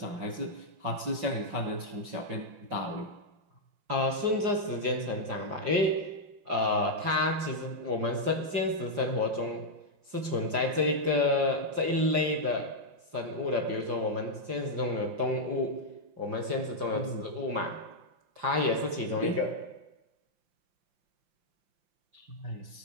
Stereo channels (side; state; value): left; late; 5.7 ms